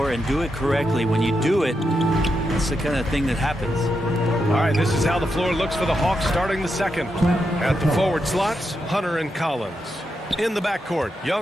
and do it correctly. When you do it, that's the kind of thing that happens. All right, this is how the floor looks for the Hawks starting the second. At the forward slots, Hunter and Collins. In the backcourt,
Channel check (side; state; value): both; normal; correlation 0.85